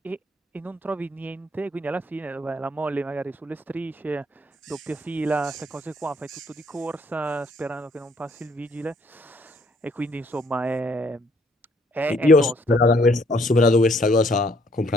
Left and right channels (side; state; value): both; normal; correlation 0.65